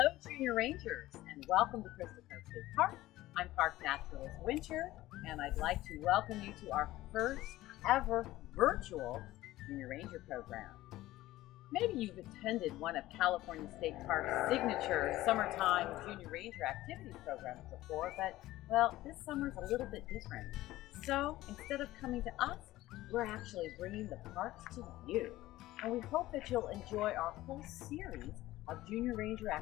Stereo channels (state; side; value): quieter; right; 16.5 dB